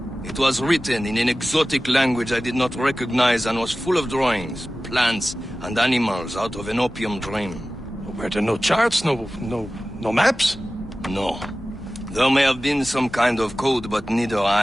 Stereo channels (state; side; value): normal; both; correlation 0.96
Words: It was written in an exotic language I did not recognize and was full of drawings, plants, and animals out of an opium dream. Were there no charts, no maps? No. There may have been some kind of code, but neither